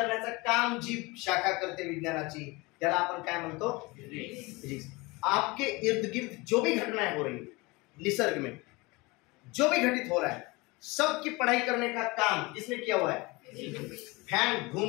काम जी शाखा करते विज्ञानाची, त्याला आपण काय म्हणतो? फिजिक्स। आपके इर्द गिर्द जो भी घटनाएं हो रही है, निसर्ग में जो भी घटित हो रहा है, सब की पढ़ाई करने का काम किसने किया हुआ है? फैन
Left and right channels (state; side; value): quieter; right; 24.3 dB